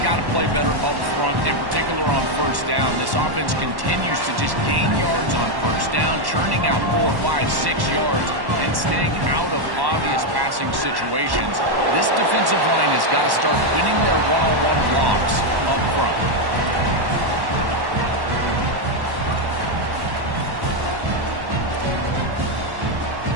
to play better up front, in particular on first down. This offense continues to just gain yards on first down, churning out 4, 5, 6 yards, and staying out of obvious passing situations. This defensive line has got to start winning their one-on-one blocks up front.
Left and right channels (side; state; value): left; late; 1.1 ms